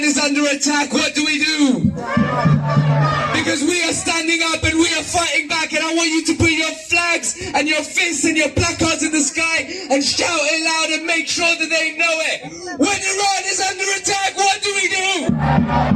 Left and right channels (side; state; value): both; identical; correlation 1.00